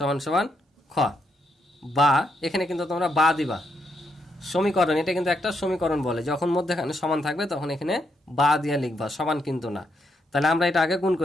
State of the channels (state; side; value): normal; both; correlation 0.78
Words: সমান খ। বা এখানে কিন্তু তোমরা বা দিবা, সমীকরণ, এটা কিন্তু একটা সমীকরণ বলে, যখন মধ্যখানে সমান থাকবে তখন এখানে বা দিয়ে লিখবা, সমান কিন্তু না। তাহলে আমরা এটা আগে গুণ